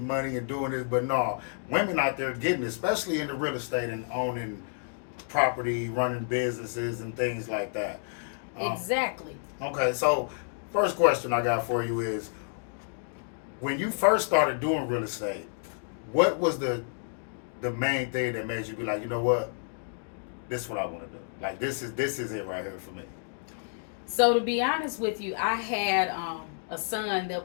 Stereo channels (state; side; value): silent; right; digital silence